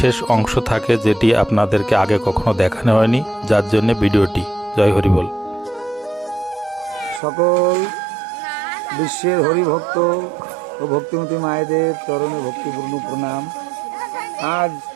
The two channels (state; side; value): drops out; left; at 7.2 s